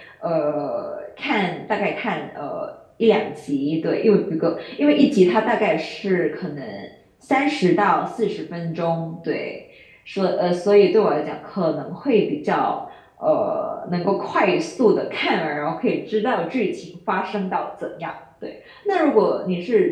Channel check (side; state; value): both; identical; correlation 1.00